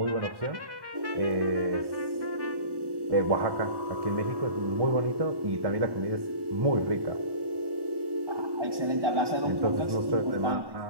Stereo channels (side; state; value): left; late; 1.1 ms